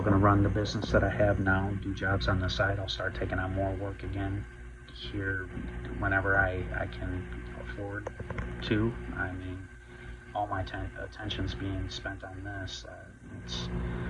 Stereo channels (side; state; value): both; identical; correlation 1.00